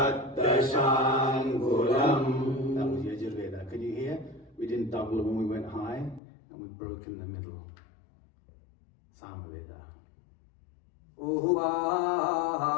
Dashangulam. That was Yajurveda. Can you hear? We didn't double when we went high, and we broke in the middle. Samaveda. Uhuvahav,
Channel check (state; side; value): drops out; right; at 6.2 s